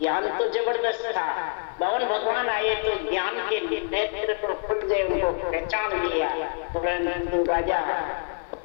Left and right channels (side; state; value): right; quieter; 36.8 dB